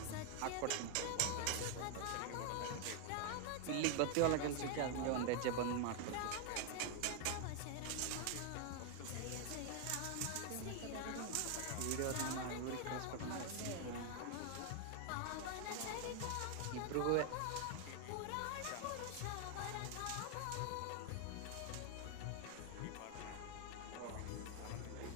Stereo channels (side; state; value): both; different; correlation 0.00